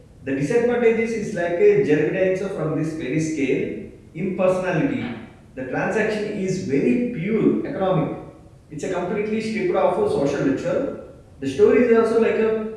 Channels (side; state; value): both; identical; correlation 1.00